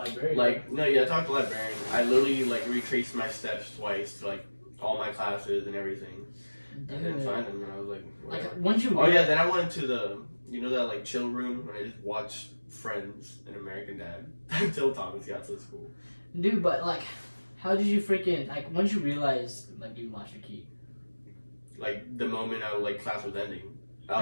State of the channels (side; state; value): both; inverted; correlation -1.00